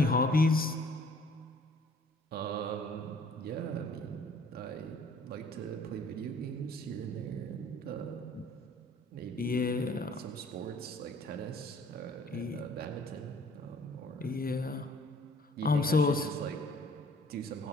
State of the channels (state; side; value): normal; both; correlation 0.56